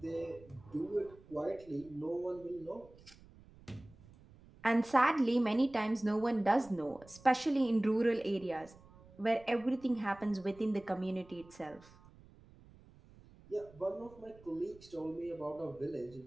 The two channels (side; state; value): right; noise; rumble, 23 dB below the sound